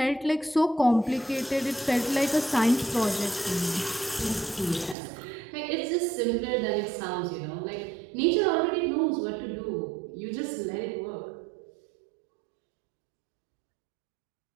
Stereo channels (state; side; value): drops out; left; at 5.0 s